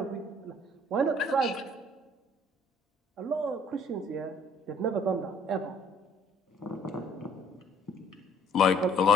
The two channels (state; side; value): normal; both; correlation 0.58